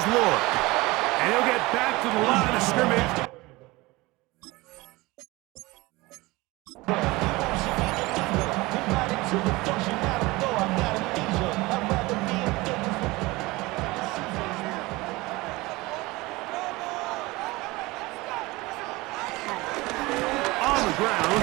Lloyd. And he'll get back to the line of scrimmage. Ground,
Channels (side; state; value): left; quieter; 21.6 dB